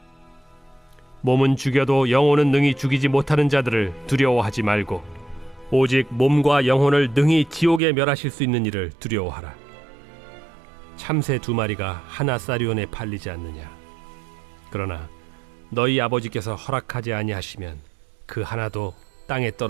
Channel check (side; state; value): left; drops out; at 7.8 s